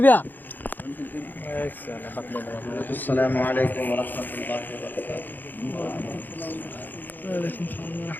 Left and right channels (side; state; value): right; late; 0.088 ms